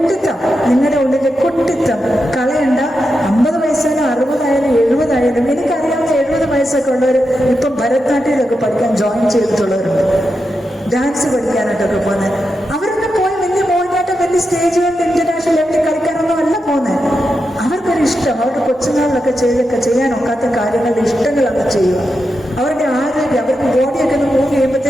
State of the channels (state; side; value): normal; both; correlation 0.87